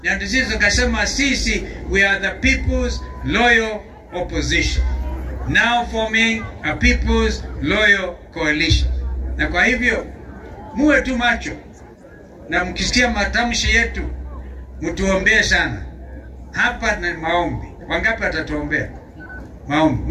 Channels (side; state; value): both; identical; correlation 1.00